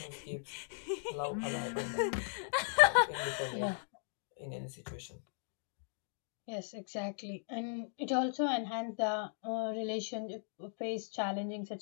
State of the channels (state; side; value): silent; right; digital silence